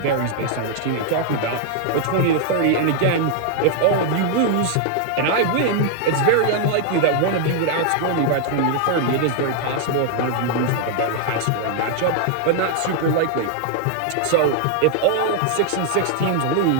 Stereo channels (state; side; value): different; both; correlation 0.00